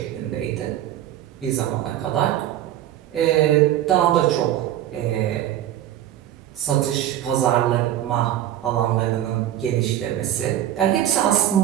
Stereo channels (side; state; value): left; quieter; 12.2 dB